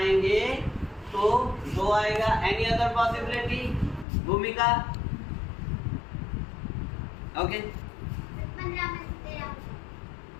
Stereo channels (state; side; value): drops out; right; at 4.0 s